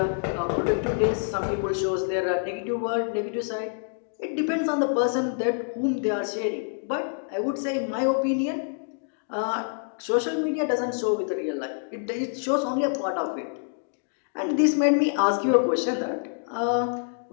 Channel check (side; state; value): right; silent; digital silence